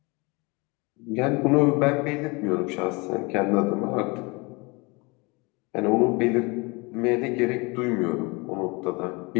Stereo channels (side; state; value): right; quieter; 27.2 dB